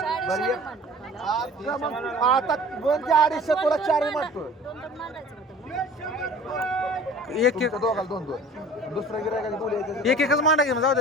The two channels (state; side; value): normal; both; correlation 0.45